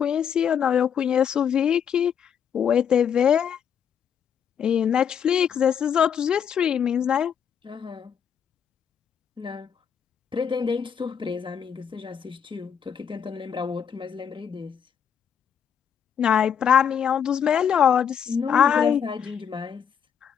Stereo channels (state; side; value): quieter; right; 7.9 dB